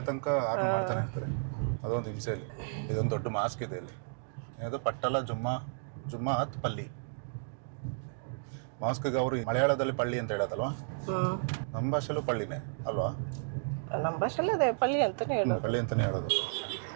ತನಕ ಆರ್ನ್ ಮಾಡ್ತಾನೆ ಇರ್ತಾರೆ. ಅದೊಂದು ಹಿಂಸೆಯಲ್ಲಿ. ಇದೊಂದು ದೊಡ್ಡ ಮಾಸ್ಕ್ ಇದೆ ಇಲ್ಲಿ, ಏನದು ಪಟ್ಟಲ ಜುಮ್ಮಾತ್ ಪಲ್ಲಿ ಮಾಸ್ಕ್ಗೆ ಅವರು ಮಲಯಾಳದಲ್ಲಿ ಪಳ್ಳಿ ಅಂತ ಹೇಳೋದಲ್ವಾ? ನಮ್ಮ ಭಾಷೆಲ್ಲೂ ಪಳ್ಳಿನೇ ಅಲ್ವಾ? ನಮ್ಮ ಭಾಷೆಲ್ಲ ಅದೇ ಪಳ್ಳಿ ಅಂತಾನೆ ಹೇಳೋದು. ಪಳ್ಳಿ ಅಂತಾನೆ ಹೇಳೋದು.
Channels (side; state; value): left; silent; digital silence